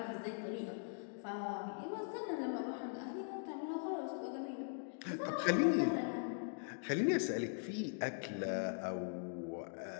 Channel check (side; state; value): right; silent; digital silence